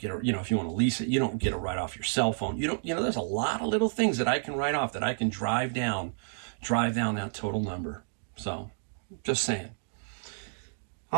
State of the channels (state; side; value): silent; left; digital silence